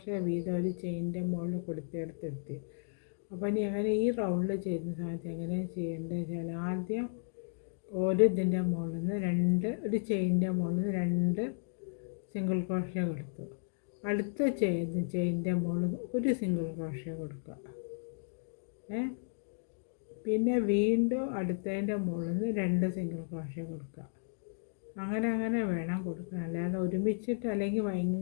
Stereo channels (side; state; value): right; silent; digital silence